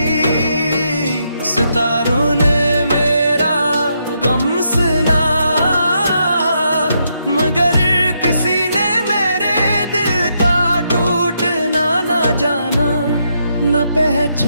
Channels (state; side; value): inverted; both; correlation -0.79